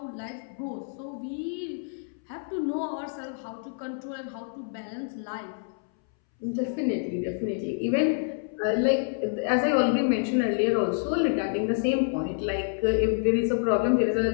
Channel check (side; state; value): right; silent; 60 dB below the other